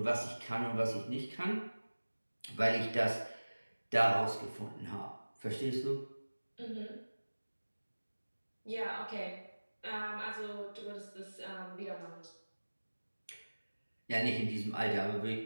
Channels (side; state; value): both; inverted; correlation -1.00